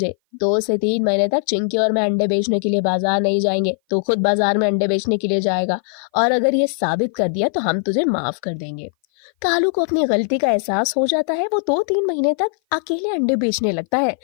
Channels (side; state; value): right; silent; 58 dB below the other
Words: 2 से 3 महीने तक चिंकी और मैं अंडे बेचने के लिए बाजार नहीं जाएंगे। तो खुद बाजार में अंडे बेचने के लिए जाएगा और अगर ये साबित कर दिया तो हम तुझे माफ कर देंगे। कालू को अपनी गलती का एहसास हो जाता है। वो 2-3 महीने तक अकेले अंडे बेचने लगता है।